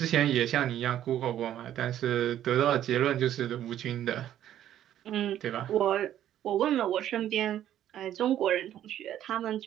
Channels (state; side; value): quieter; left; 11.6 dB